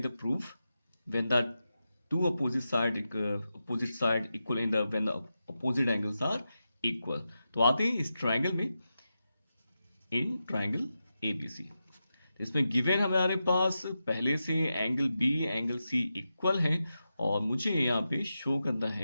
the proof when the two opposite side equal in the when the opposite angles are equal। तो आते हैं इस ट्राइंगल में, इन ट्राइंगल ABC। इसमें गिवन हमारे पास पहले से angle B angle C equal है, और मुझे यहाँ पे शो करना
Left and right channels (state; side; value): inverted; both; correlation -0.90